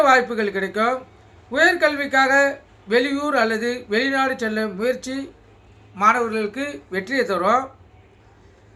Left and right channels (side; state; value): both; identical; correlation 1.00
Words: வாய்ப்புகள் கிடைக்கும். உயர்கல்விக்காக வெளியூர் அல்லது வெளிநாடு செல்ல முயற்சி மாணவர்களுக்கு வெற்றியை தரும்.